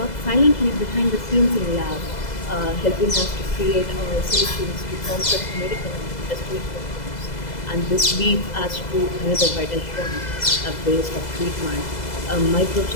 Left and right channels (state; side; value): late; right; 2.0 ms